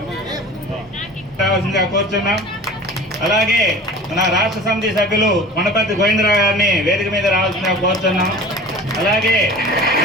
రావాల్సిందిగా కోరుతున్నాం. అలాగే మన రాష్ట్ర సమితి సభ్యులు కొనపర్తి గోవిందరావు గారిని వేదిక మీద రావాల్సిందిగా కోరుతున్నాం. అలాగే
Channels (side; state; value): both; normal; correlation 0.40